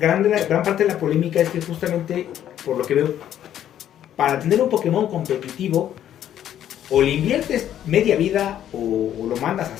parte de la polémica es que justamente, por lo que veo, para tener un Pokémon competitivo, o le inviertes media vida o lo mandas a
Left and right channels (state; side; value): quieter; right; 10.9 dB